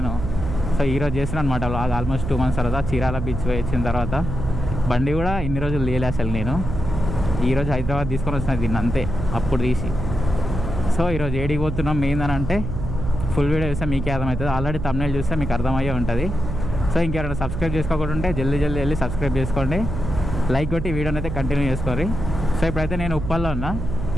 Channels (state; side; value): noise; right; hum, 4 dB below the sound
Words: సో ఈరోజు చేస్తున్నాను అనమాట వ్లాగ్. ఆల్మోస్ట్ 2 months తర్వాత చీరాల బీచ్ పోయి వచ్చిన తర్వాత బండి కూడా ఇన్ని రోజులు లేలే అసలు. నేను ఈరోజు హైదరాబాద్ తీసుకొని వచ్చిన దీన్ని అంతే, అప్పుడు తీసి. సో ఈరోజు ఏడికి పోతున్నాం మెయిన్ అని అంటే ఫుల్ వీడియో చూస్తే మీకే అర్థమవుతుంది. ఆల్రెడీ thumbnail చూస్తే మీకు అర్థమయ్యే ఉంటుంది. సో ఇంకెవరైనా సబ్స్క్రైబ్ చేసుకోకుండా ఉంటే జల్దీ వెళ్ళి సబ్స్క్రైబ్ చేసుకోండి, లైక్ కొట్టి వీడియోని అయితే కంటిన్యూ చేసుకోండి. సో ఇప్పుడైతే నేను ఉప్పల్లో ఉన్నా.